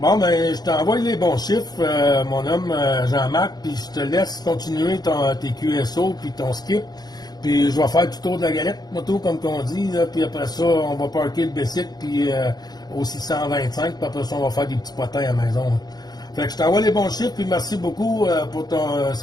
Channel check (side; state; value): right; late; 0.19 ms